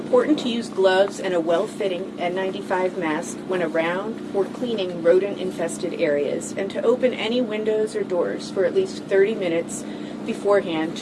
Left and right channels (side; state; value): both; identical; correlation 1.00